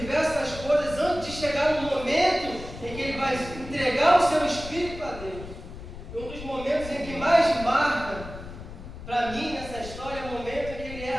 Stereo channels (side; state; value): left; noise; rumble, 12 dB below the sound